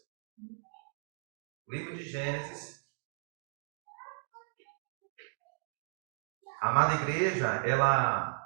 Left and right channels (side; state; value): left; silent; digital silence